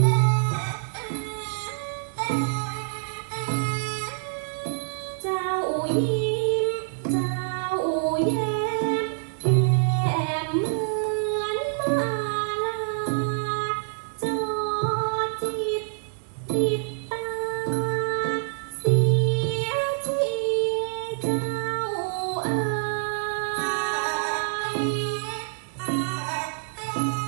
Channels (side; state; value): left; silent; digital silence